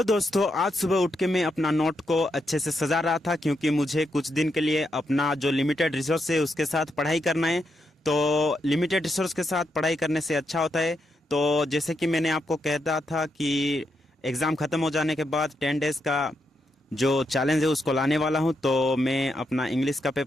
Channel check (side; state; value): both; normal; correlation 0.82